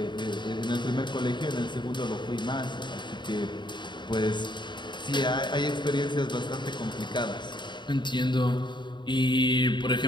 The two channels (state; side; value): late; right; 0.22 ms